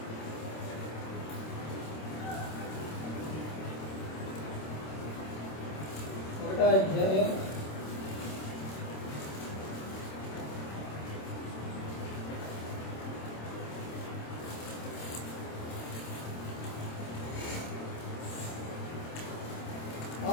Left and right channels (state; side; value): late; right; 26 ms